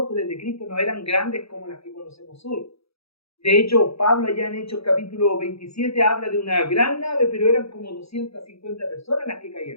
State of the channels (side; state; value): right; late; 0.77 ms